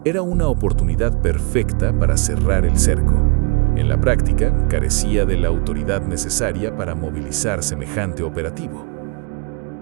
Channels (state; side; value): quieter; left; 32.1 dB